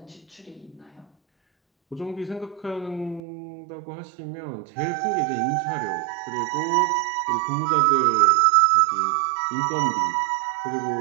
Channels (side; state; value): left; drops out; at 3.2 s